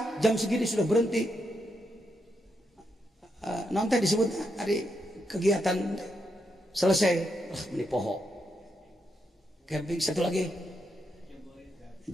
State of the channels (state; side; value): normal; both; correlation 0.82